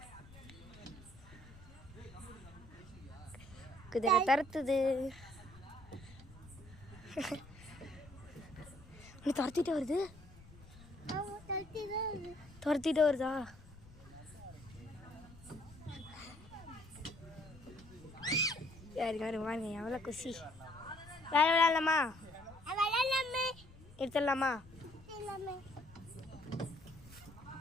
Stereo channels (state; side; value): noise; left; rumble, 20 dB below the sound